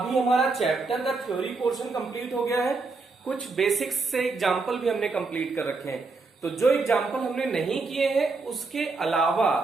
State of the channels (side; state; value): left; quieter; 3.9 dB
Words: हमारा चैप्टर का थ्योरी पोर्शन कंप्लीट हो गया है, कुछ बेसिक्स से एग्जाम्पल भी हमने कंप्लीट कर रखे हैं। तो जो एग्जाम्पल हमने नहीं किए हैं उसके अलावा,